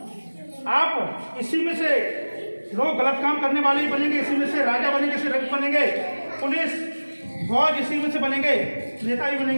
आप इसी में से लोग गलत काम करने वाले ही बनेंगे, इसी में से राजा बनेंगे, इसी रंग बनेंगे, पुलिस फौज इसी में से बनेंगे, नेता ही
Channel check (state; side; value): inverted; both; correlation -1.00